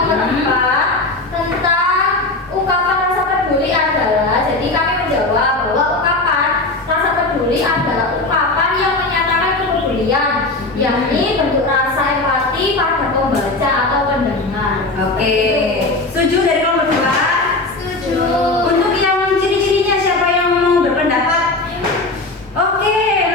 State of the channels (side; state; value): right; quieter; 3.0 dB